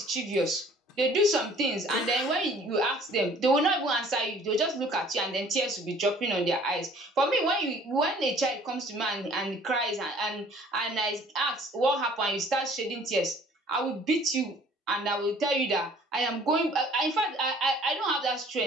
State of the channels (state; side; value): normal; both; correlation 0.54